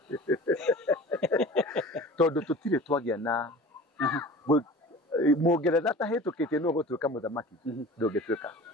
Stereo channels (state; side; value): normal; both; correlation 0.40